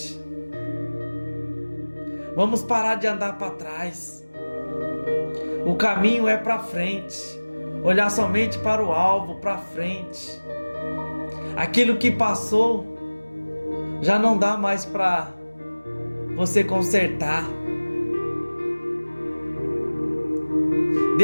Vamos parar de andar para trás. O caminho é para frente. Olhar somente para o alvo, para frente. Aquilo que passou já não dá mais para você consertar.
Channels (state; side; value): inverted; both; correlation -1.00